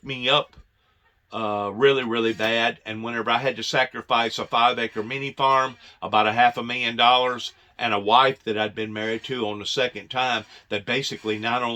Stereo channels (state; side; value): identical; both; correlation 1.00